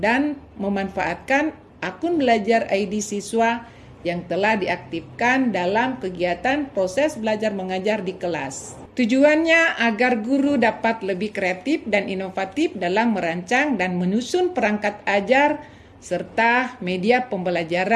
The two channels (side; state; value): both; identical; correlation 1.00